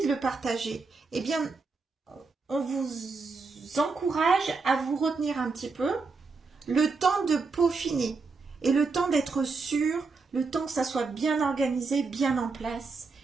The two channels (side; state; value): left; quieter; 4.3 dB